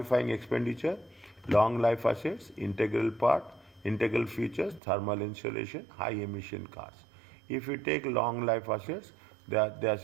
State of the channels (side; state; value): left; drops out; at 4.8 s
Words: expenditure? Long life assets, integral part, integral features, thermal insulation, high emission cars. If you take long life assets, they are